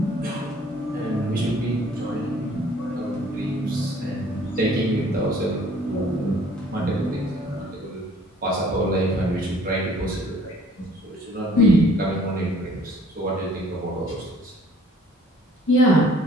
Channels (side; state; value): both; normal; correlation 0.56